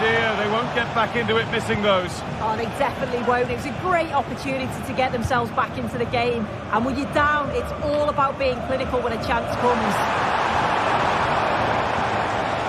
dear, they won't get back into it missing those. Oh, they definitely won't. It was a great opportunity to get themselves back into the game. And when you're down, it's all about being clinical when a chance comes.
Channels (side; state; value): both; identical; correlation 1.00